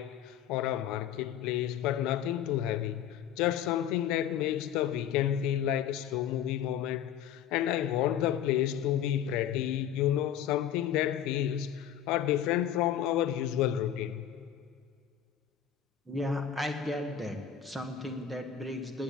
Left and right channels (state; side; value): quieter; right; 9.7 dB